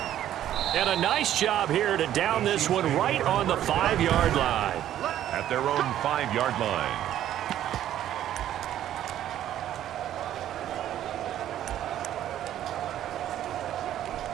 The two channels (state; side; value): quieter; left; 11.8 dB